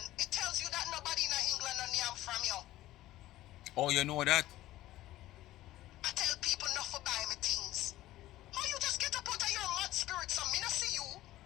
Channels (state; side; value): quieter; right; 15.5 dB